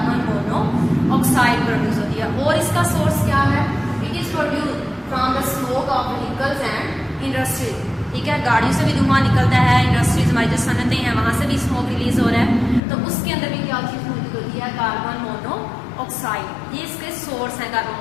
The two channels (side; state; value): right; drops out; at 12.8 s